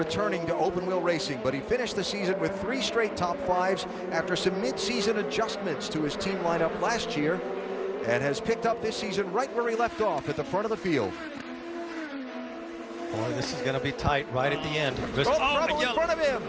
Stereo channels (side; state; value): both; identical; correlation 1.00